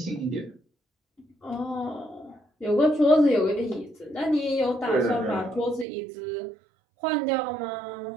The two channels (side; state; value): left; drops out; at 5.9 s